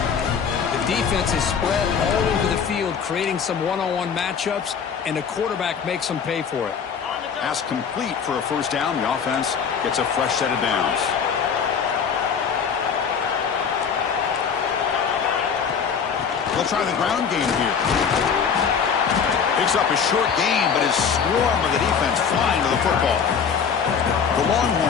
The defense is spread all over the field, creating some one-on-one matchups, and the quarterback makes them pay for it. Pass complete for a first down. The offense gets a fresh set of downs. They'll try the ground game here. Picks up a short gain, but his swarm of the defense flying to the football. The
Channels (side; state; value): right; quieter; 6.7 dB